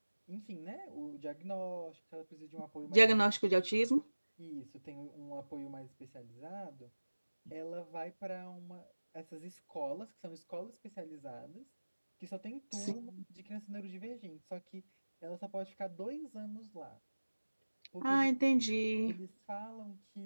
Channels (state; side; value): inverted; both; correlation -1.00